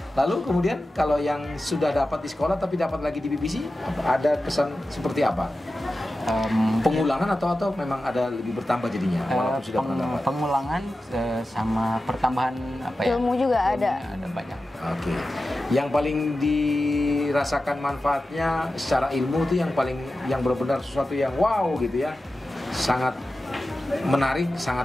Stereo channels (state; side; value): normal; both; correlation 0.93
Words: Lalu kemudian kalau yang sudah dapat di sekolah tapi dapat lagi di BBC, ada kesan seperti apa? Pengulangan atau memang ada lebih bertambah jadinya walaupun sudah pernah dapat? Pengulangan sama pertambahan apa ya? Ilmu juga ada. Ada banyak. Oke. Yang paling dirasakan manfaatnya secara ilmu itu yang benar-benar sesuatu yang wow gitu ya. Sangat menarik,